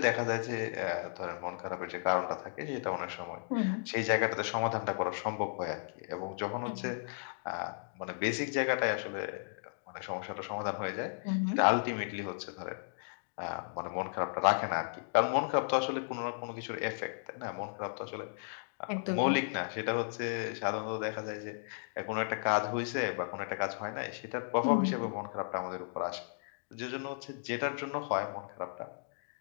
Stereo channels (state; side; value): silent; right; digital silence